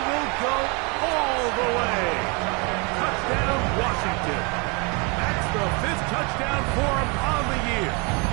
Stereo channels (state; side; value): quieter; left; 31.6 dB